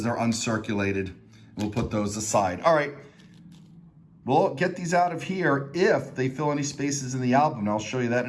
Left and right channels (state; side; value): identical; both; correlation 1.00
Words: they're uncirculated. We'll put those aside. All right, we'll get these out of here if they fill any spaces in the album. I'll show you that